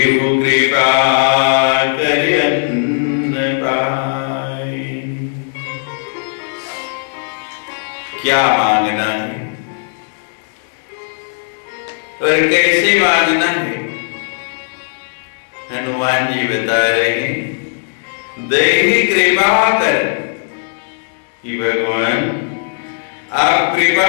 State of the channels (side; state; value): right; silent; digital silence